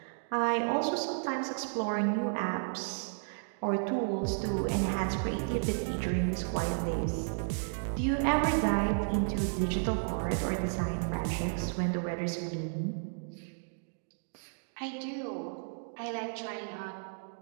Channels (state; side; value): silent; left; digital silence